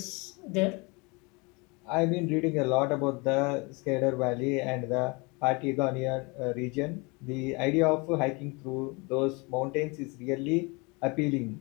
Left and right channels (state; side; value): quieter; right; 28.2 dB